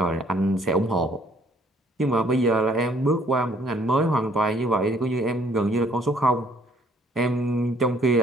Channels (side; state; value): both; normal; correlation 0.62